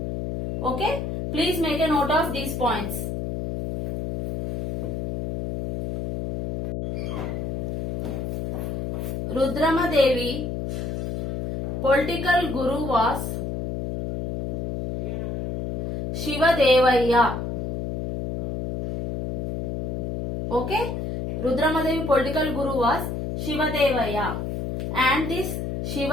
Okay, please make a note of these points. Rudramadevi political guru was Shivadevaya. Okay, Rudramadevi political guru was Shivadevaya, and this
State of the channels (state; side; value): noise; left; hum, 3 dB below the sound